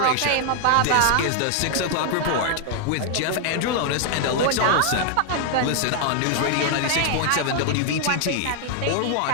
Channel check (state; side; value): different; both; correlation 0.00